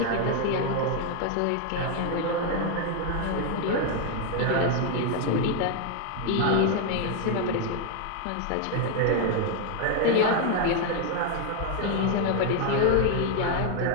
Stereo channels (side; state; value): both; different; correlation 0.00